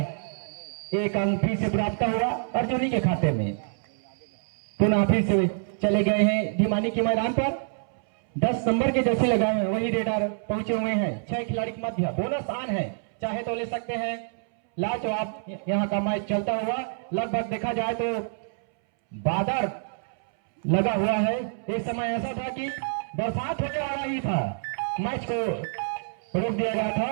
1 अंक फिर से प्राप्त हुआ अर्जुनी के खाते में। पुनः फिर से चले गए हैं ढिमानी के मैदान पर। 10 नंबर के जैसे लगाए हैं वही रेडर पहुंचे हुए हैं। 6 खिलाड़ी के मध्य बोनस आन है, चाहे तो ले सकते हैं। लाजवाब यहाँ का मैच चलता हुआ लगभग देखा जाए तो बादल लगा हुआ है। एक समय ऐसा था कि बरसात होने वाला ही था, मैच को रोक दिया गया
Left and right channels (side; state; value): left; silent; 60 dB below the other